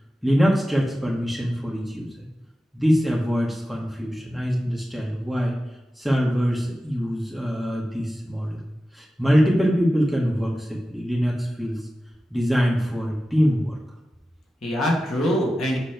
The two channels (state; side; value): normal; both; correlation 0.94